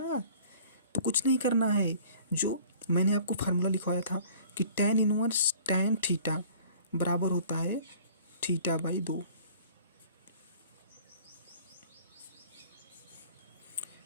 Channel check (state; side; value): inverted; both; correlation -0.50